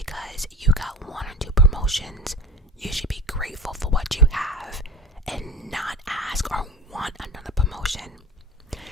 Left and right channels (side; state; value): both; normal; correlation 0.36